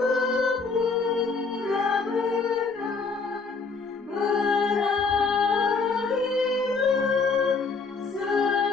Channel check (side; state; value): right; quieter; 4.5 dB